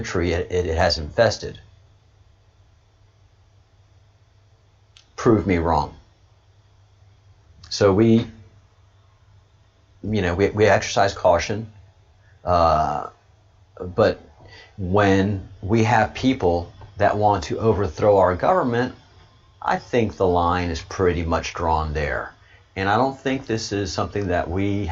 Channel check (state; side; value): identical; both; correlation 1.00